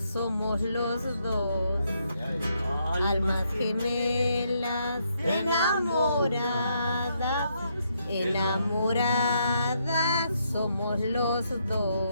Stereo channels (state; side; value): inverted; both; correlation -0.76